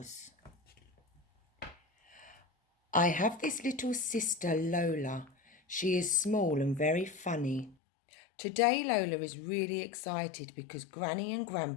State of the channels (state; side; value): drops out; right; at 7.8 s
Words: I have this little sister, Lola. She is small and very funny. Today Lola is really excited because Granny and